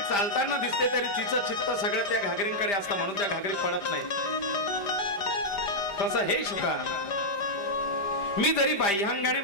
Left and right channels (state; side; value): late; right; 5.0 ms